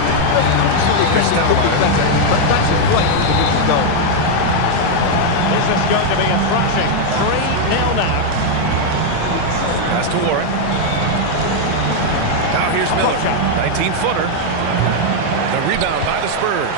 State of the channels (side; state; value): both; different; correlation 0.00